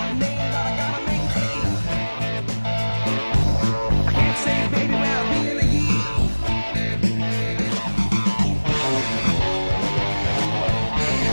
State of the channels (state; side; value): inverted; both; correlation -1.00